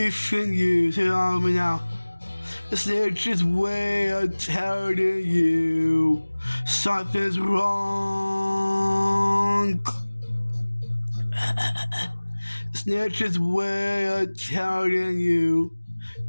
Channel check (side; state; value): both; inverted; correlation -1.00